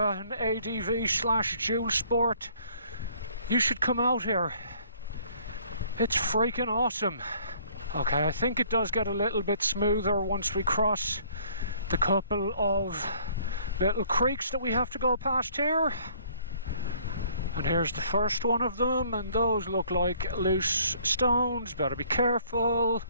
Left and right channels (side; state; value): both; inverted; correlation -0.58